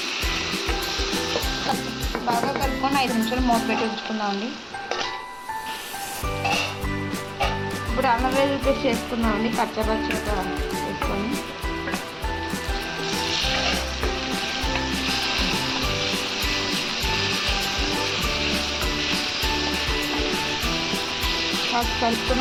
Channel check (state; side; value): identical; both; correlation 1.00